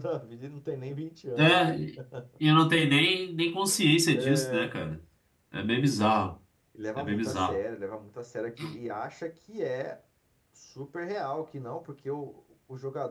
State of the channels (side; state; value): both; identical; correlation 1.00